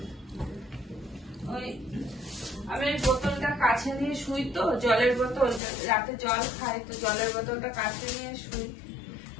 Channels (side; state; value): right; drops out; at 5.6 s